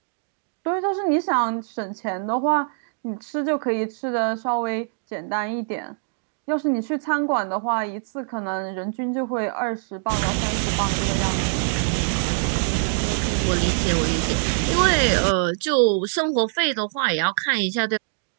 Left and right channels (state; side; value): silent; left; digital silence